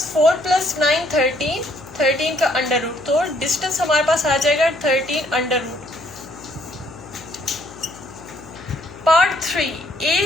4 प्लस 9 13 का अंडर रूट, तो डिस्टेंस हमारे पास आ जाएगा 13 अंडर रूट। पार्ट 3,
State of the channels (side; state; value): left; noise; hum, 19 dB below the sound